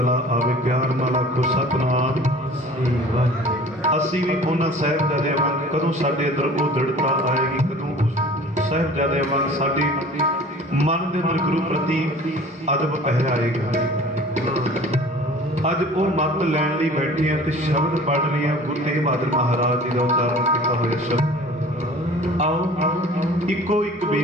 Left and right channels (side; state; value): both; normal; correlation 0.45